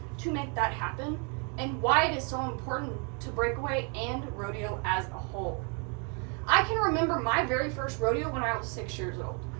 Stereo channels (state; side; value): quieter; left; 37.3 dB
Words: to make that happen and why it is so important to breakaway and rodeo as a whole. I can remember my very first rodeo when I was 6 years old.